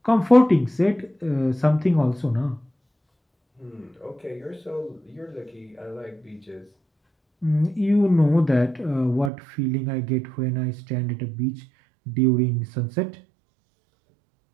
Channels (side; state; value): left; drops out; at 9.3 s